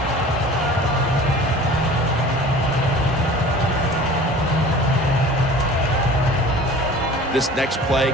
This next play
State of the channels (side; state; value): both; normal; correlation 0.43